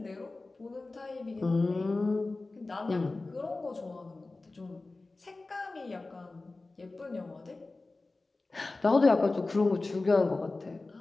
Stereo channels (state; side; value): quieter; right; 3.3 dB